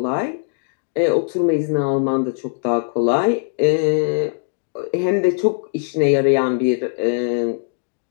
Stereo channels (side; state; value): right; silent; digital silence